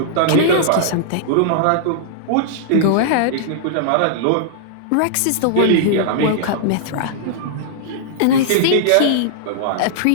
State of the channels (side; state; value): both; different; correlation -0.01